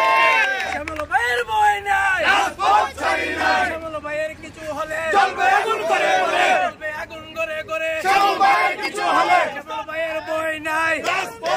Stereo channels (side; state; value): both; identical; correlation 1.00